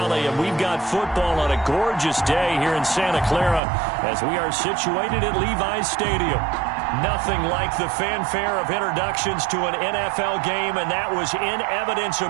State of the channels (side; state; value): left; drops out; at 3.6 s